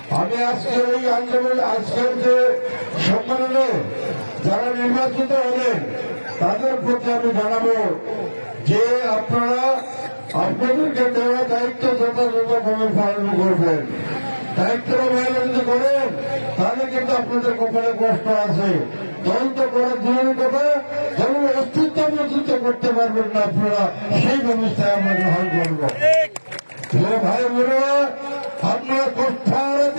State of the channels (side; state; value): both; inverted; correlation -1.00